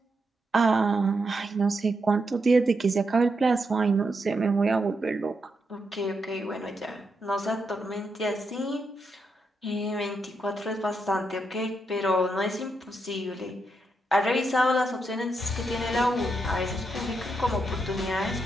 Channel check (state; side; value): normal; both; correlation 0.82